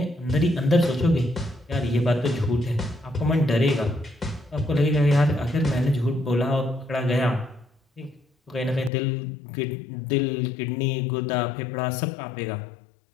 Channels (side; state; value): right; drops out; at 8.9 s